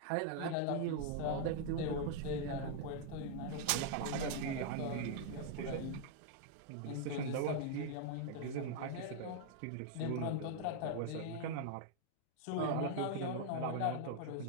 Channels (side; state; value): both; different; correlation -0.01